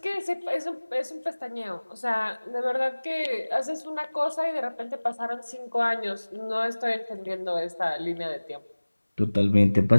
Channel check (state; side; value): inverted; both; correlation -1.00